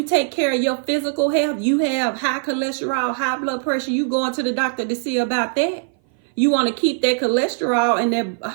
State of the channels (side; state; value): left; silent; 59 dB below the other